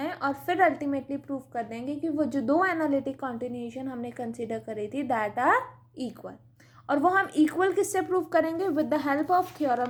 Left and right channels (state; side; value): identical; both; correlation 1.00